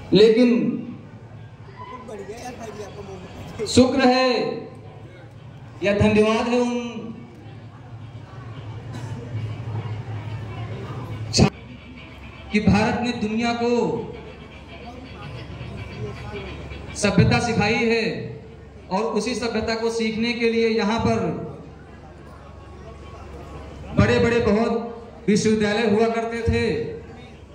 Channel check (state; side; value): identical; both; correlation 1.00